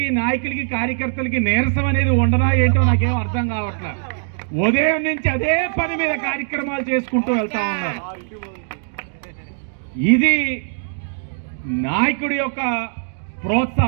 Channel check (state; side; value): silent; left; digital silence